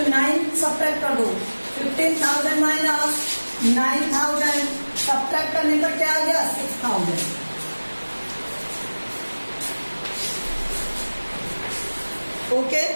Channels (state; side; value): inverted; both; correlation -1.00